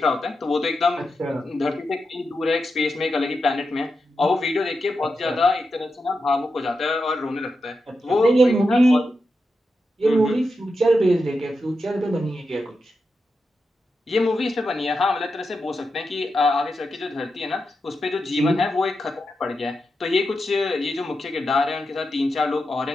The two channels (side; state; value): both; normal; correlation 0.88